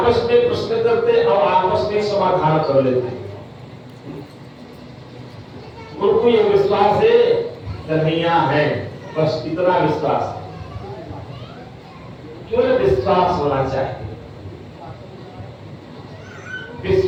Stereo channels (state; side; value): identical; both; correlation 1.00